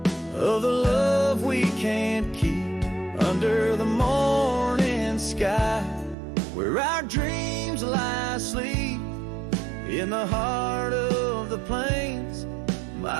the love we can't keep. Under the morning sky, where our dreams lie asleep, in the heart of the plains,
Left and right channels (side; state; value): left; drops out; at 6.2 s